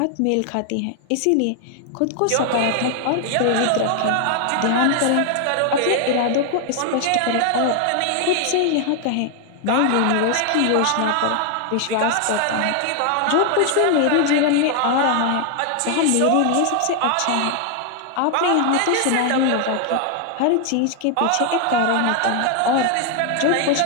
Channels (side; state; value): both; different; correlation 0.00